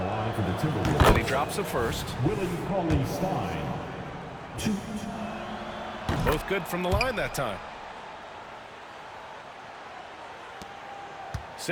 line for the Timberwolves. And he drops a first. Willie Cauley-Stein. 2. Both good from the line that time.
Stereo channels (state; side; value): identical; both; correlation 1.00